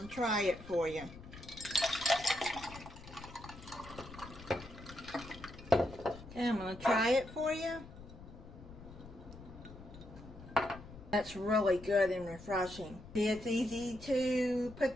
to try it for you. Okay, I'm going to try it for you. That's really good and refreshing. It's easy to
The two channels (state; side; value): noise; left; rumble, 16 dB below the sound